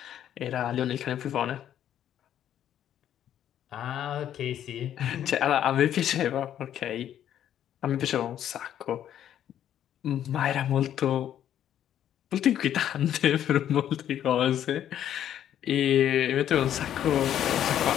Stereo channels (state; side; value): quieter; right; 10.6 dB